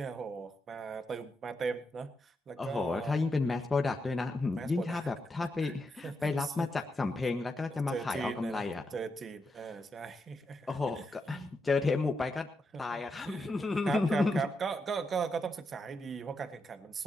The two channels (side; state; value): both; normal; correlation 0.84